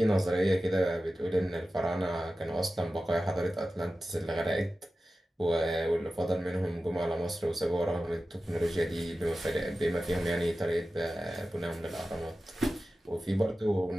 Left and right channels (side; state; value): both; normal; correlation 0.94